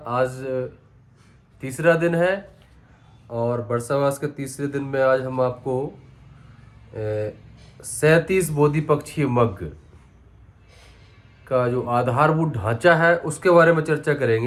आज तीसरा दिन है। और बरसावास के तीसरे दिन में आज हम आपको 37 बोधि पक्षी मग का जो आधारभूत ढांचा है उसके बारे में चर्चा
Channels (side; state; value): both; identical; correlation 1.00